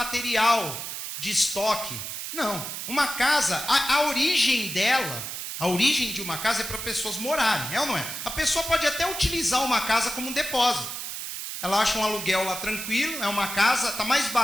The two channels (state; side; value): noise; right; hiss, 6 dB below the sound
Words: de estoque. Não. Uma casa, a origem dela, a origem de uma casa é para pessoas morarem, é ou não é? A pessoa pode até utilizar uma casa como um depósito. Ela acha um aluguel lá tranquilo, é uma casa, está mais